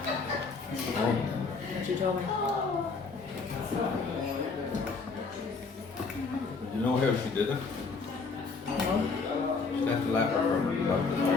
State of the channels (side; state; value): right; quieter; 4.5 dB